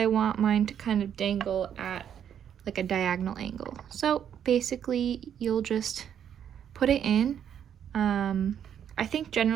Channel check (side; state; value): left; quieter; 9.0 dB